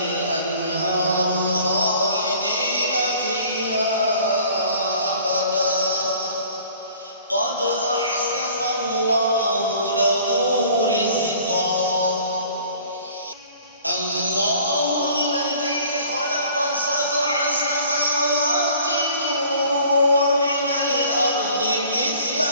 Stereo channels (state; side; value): inverted; both; correlation -0.50